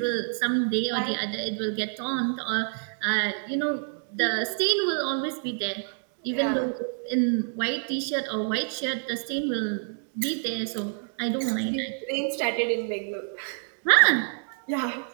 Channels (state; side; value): silent; left; digital silence